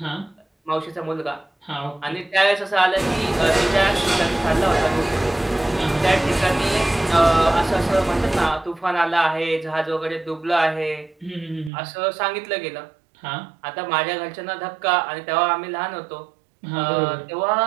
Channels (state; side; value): drops out; left; at 11.7 s